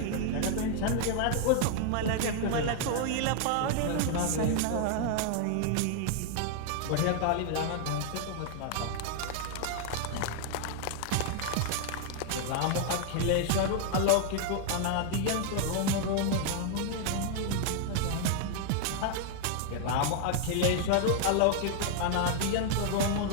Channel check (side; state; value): both; different; correlation 0.00